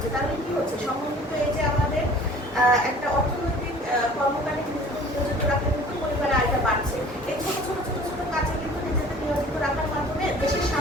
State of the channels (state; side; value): normal; both; correlation 0.48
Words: তাহলে কি হচ্ছে, সমন্বিত এই যে আমাদের একটা অর্থনৈতিক কর্মকারী নিয়োজিত রাখলে কিন্তু পরিবারের আয়টা বাড়ছে। এই ছোট ছোট ছোট ছোট কাজে কিন্তু নিজেদের নিয়োজিত রাখার মাধ্যমে দেশের